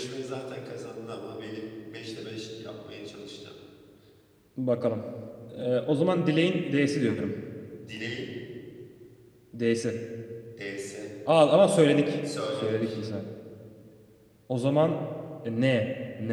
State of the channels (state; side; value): identical; both; correlation 1.00